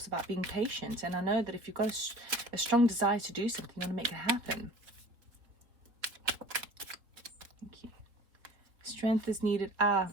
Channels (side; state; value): left; late; 3.7 ms